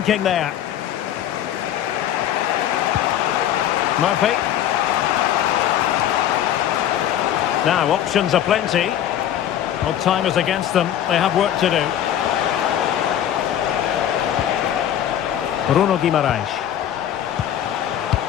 there. Murphy. Now, options are plenty. Well, time is against them. They have work to do. Bruno Guimaraes.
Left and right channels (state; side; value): quieter; right; 10.8 dB